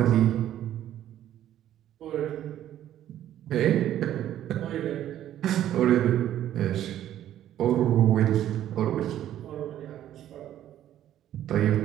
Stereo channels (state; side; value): quieter; left; 11.8 dB